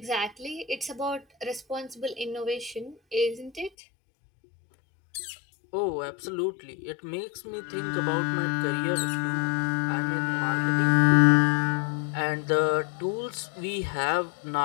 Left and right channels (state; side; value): drops out; right; at 3.7 s